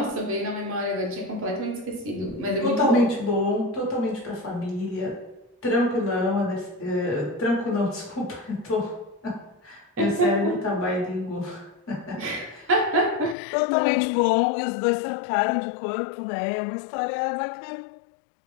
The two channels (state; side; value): drops out; right; at 13.4 s